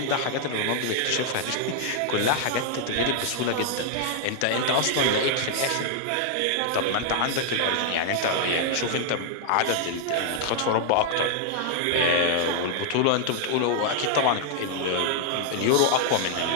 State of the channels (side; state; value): both; different; correlation -0.01